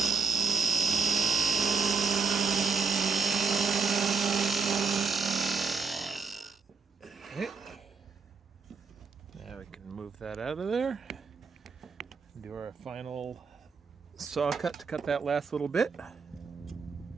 that out of there. Do our final saw cut to cut that last little bit.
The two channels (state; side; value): quieter; left; 5.0 dB